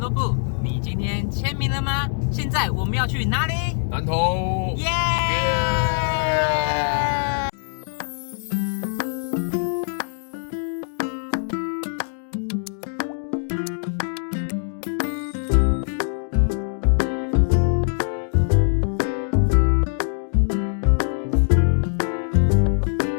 部。你今天签名了吗？现在我们要去哪里？南投。耶！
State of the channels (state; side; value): silent; right; digital silence